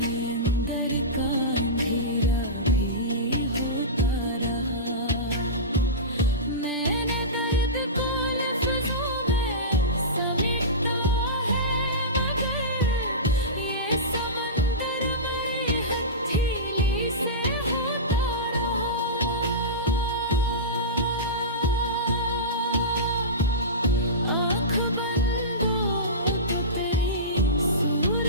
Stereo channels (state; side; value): normal; both; correlation -0.20